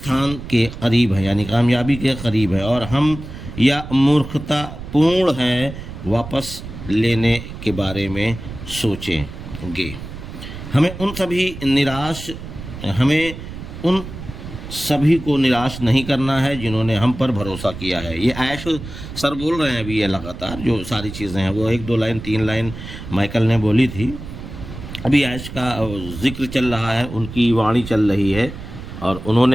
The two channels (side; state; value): right; noise; rumble, 11 dB below the sound